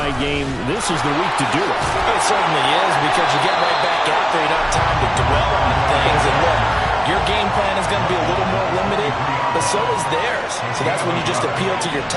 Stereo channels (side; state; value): both; identical; correlation 1.00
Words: game, this is the week to do it. It certainly is, because you get right back after. You don't have time to dwell on things. And look, your game plan is going to be a little more limited, but so is theirs. So that's when you just appeal to your